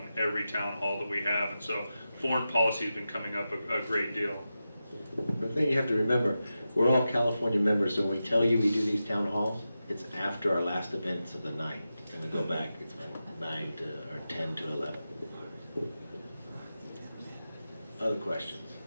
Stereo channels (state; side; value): inverted; both; correlation -0.91